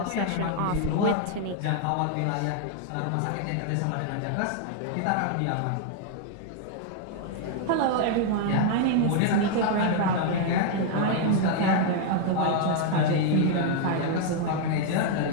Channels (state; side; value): different; both; correlation 0.00